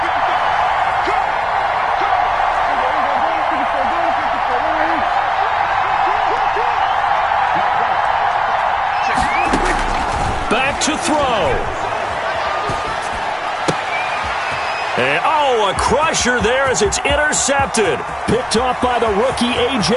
to throw. And, oh, a crusher there as it's intercepted. Picked off by the rookie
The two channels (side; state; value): both; identical; correlation 1.00